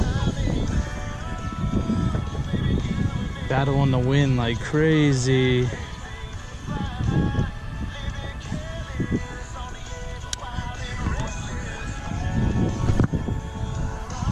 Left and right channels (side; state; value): both; identical; correlation 1.00